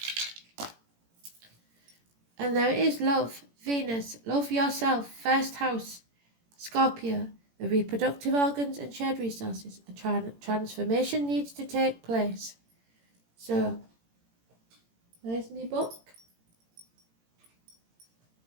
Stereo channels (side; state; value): left; late; 18 ms